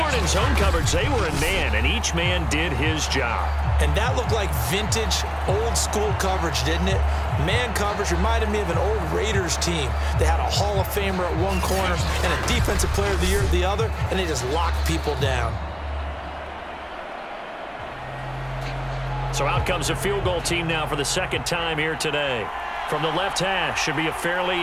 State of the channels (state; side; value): identical; both; correlation 1.00